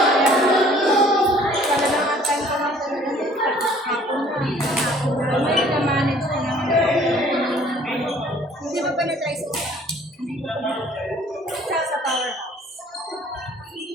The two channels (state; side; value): normal; both; correlation 0.55